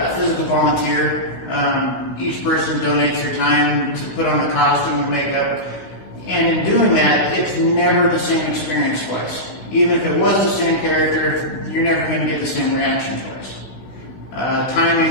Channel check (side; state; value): right; late; 16 ms